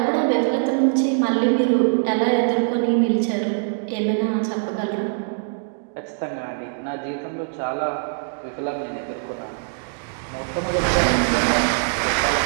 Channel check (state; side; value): silent; left; digital silence